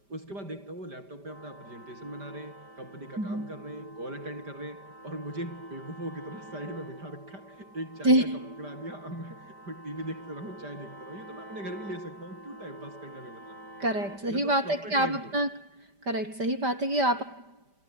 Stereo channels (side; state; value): left; late; 5.1 ms